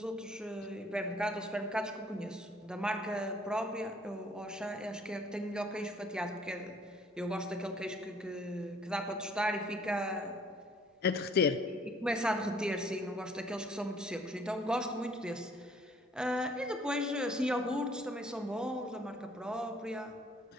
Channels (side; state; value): both; normal; correlation 0.59